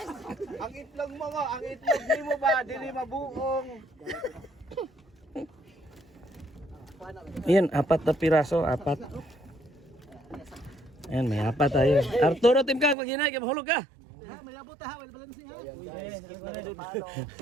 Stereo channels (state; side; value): drops out; left; at 13.0 s